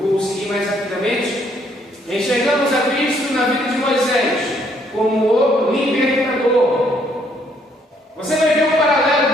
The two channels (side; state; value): both; normal; correlation 0.68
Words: seguir mais rapidamente, enxergamos a Cristo na vida de Moisés como o libertador. Você vai ver um paralelo